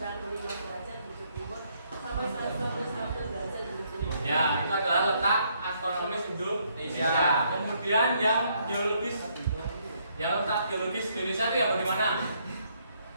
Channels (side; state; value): both; inverted; correlation -0.71